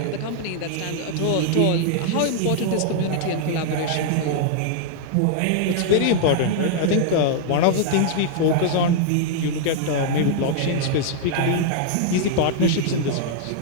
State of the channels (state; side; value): different; both; correlation -0.01